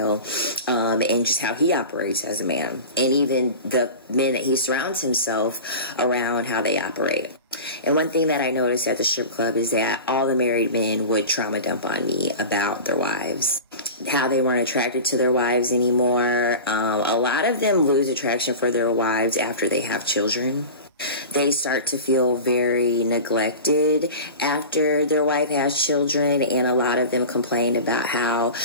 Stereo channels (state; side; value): inverted; both; correlation -0.32